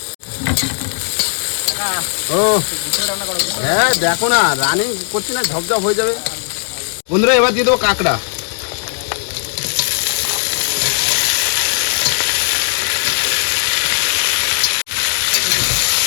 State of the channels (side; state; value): right; silent; 68 dB below the other